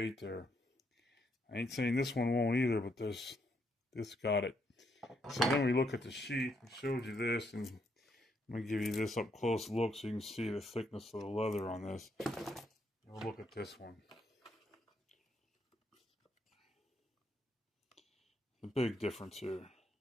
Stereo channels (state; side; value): normal; both; correlation 0.75